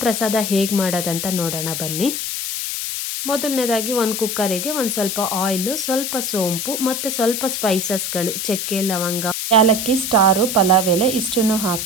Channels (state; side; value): noise; left; hiss, 3 dB below the sound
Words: ಪ್ರಸಾದ ಹೇಗೆ ಮಾಡೋದಂತ ನೋಡೋಣ ಬನ್ನಿ. ಮೊದಲನೇದಾಗಿ ಒಂದು ಕುಕ್ಕರಿಗೆ ಒಂದು ಸ್ವಲ್ಪ ಆಯಿಲು, ಸ್ವಲ್ಪ ಸೋಂಪು ಮತ್ತು ಸ್ವಲ್ಪ ಸ್ಪೈಸಸ್ಗಳು, ಚಕ್ಕೆ, ಲವಂಗ, ಏಲಕ್ಕಿ, ಸ್ಟಾರು, ಪಲಾವ್ ಎಲೆ ಇಷ್ಟನ್ನು